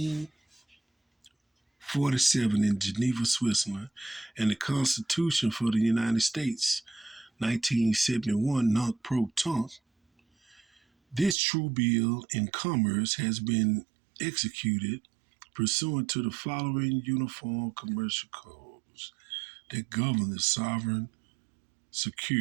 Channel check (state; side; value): drops out; left; at 11.4 s